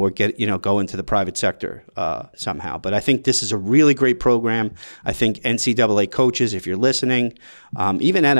go into the private sector somehow. But I think this is a really great program. I think NCAA coaches, if you're listening, even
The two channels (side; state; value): both; inverted; correlation -1.00